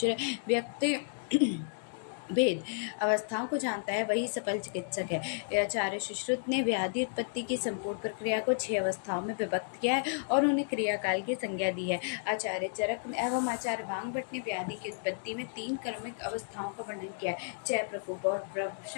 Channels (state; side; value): silent; right; digital silence